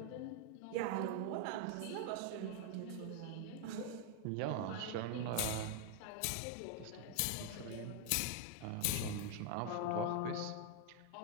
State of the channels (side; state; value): both; different; correlation 0.00